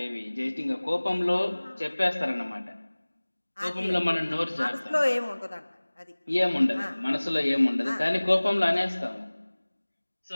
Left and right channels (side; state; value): both; inverted; correlation -1.00